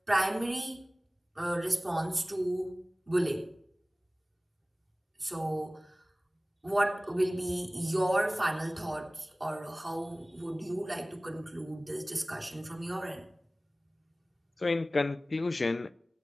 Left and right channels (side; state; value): both; normal; correlation 0.98